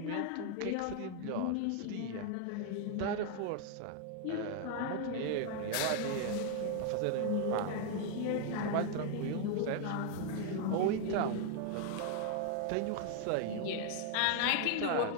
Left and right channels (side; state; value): both; different; correlation 0.00